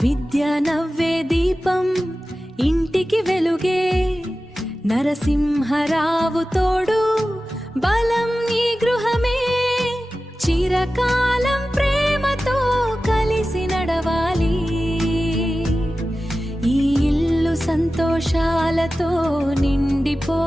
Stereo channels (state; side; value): normal; both; correlation 0.95